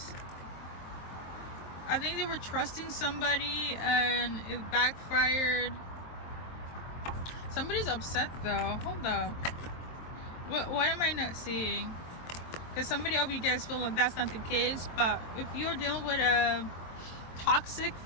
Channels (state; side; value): late; right; 23 ms